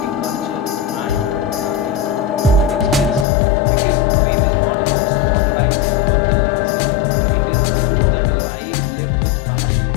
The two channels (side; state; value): right; drops out; at 3.2 s